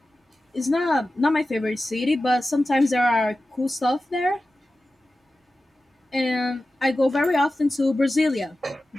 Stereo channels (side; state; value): both; normal; correlation 0.94